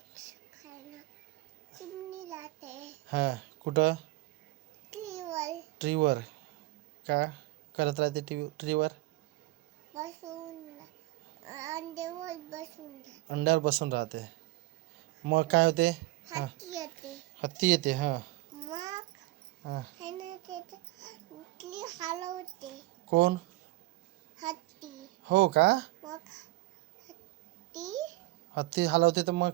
हां कुठं ट्रीवर का करत राहते ट्रीवर अंड्यावर बसून राहते. मग काय होते. हां हत्ती येते. हां हां कोण हो का हत्ती हलवते तर मग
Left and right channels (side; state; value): left; quieter; 20.1 dB